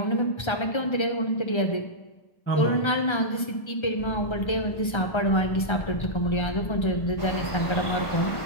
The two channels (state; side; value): late; right; 1.3 ms